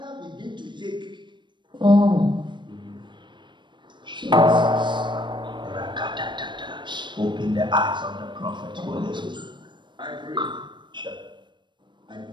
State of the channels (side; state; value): left; late; 0.22 ms